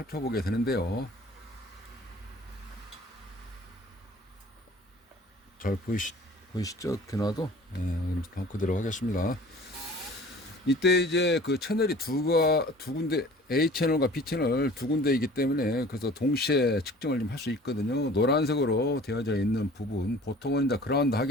되는데요. 잘 보이시죠? 이렇게 놔도 네, 그대로 하겠습니다. 이때 이제 그 채널이 두 군데, A 채널과 B 채널 두 군데이기 때문에 그래서 동시에 측정을 좀 할 수 있거든요. 노란색으로 되어져 있는 부분, 보통은 이제 그라운드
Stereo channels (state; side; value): normal; both; correlation 0.47